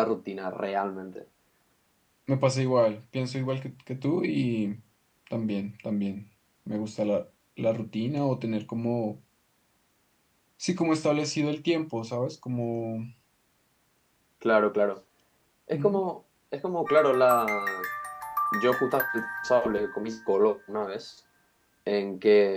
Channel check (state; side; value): identical; both; correlation 1.00